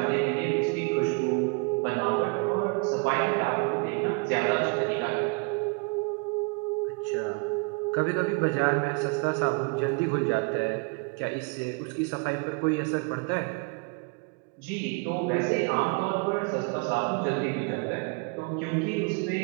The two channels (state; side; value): quieter; left; 32.5 dB